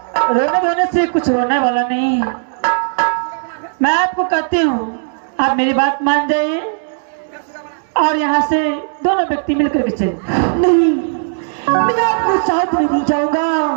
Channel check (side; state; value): left; silent; 69 dB below the other